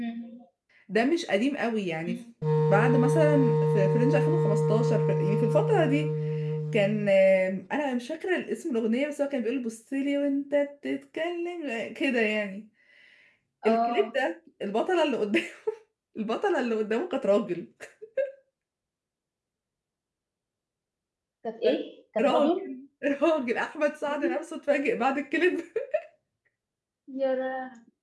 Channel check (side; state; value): both; identical; correlation 1.00